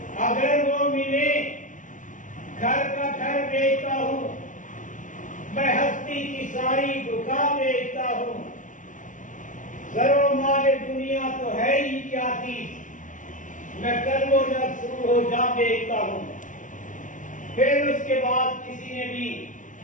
اگر وہ ملے گھر کا گھر بیچتا ہوں، میں ہستی کی ساری دکان بیچتا ہوں، زر و مال دنیا تو ہے ہی کیا چیز، میں کل و جب شروع ہو جا بیچتا ہوں۔ پھر اس کے بعد کسی نے بھی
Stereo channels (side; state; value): right; late; 0.37 ms